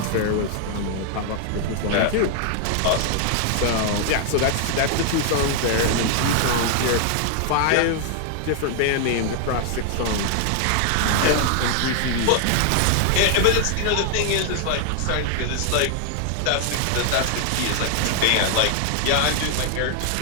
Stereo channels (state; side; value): different; both; correlation 0.00